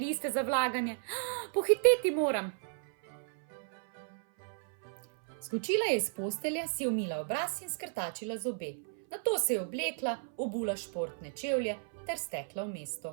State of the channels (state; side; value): silent; left; 55 dB below the other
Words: za vlaganje. Pohiteti moram. Skočila je iz postelje, si umila obraz in skrtačila zobe. Nato se je oblekla, obula športne čevlje ter stekla v